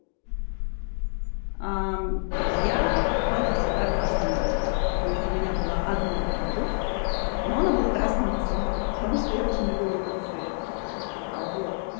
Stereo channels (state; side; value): silent; right; digital silence